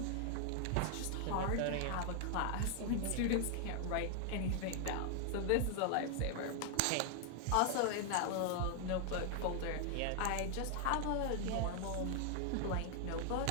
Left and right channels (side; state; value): both; different; correlation 0.00